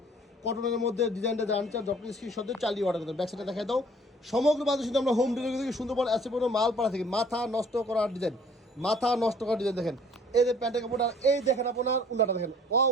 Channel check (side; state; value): both; normal; correlation 0.55